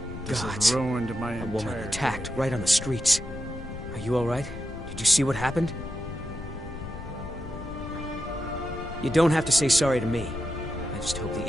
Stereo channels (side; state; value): left; noise; rumble, 11 dB below the sound